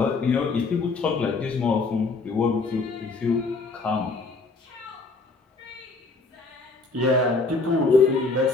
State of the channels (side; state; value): right; quieter; 3.8 dB